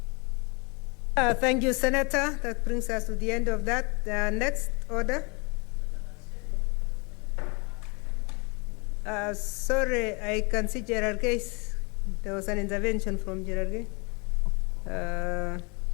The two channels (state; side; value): quieter; right; 30.5 dB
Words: Thank you, Senator. That brings us to the end of that. Next order. Sorry, I can see Gerard Case. There was an intervention from Gerard Case.